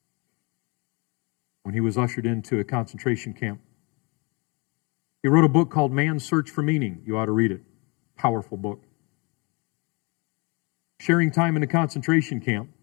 when he was ushered into a concentration camp. He wrote a book called Man's Search for Meaning. You ought to read it. Powerful book. Sharing time in a concentration camp,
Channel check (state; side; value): quieter; right; 30.1 dB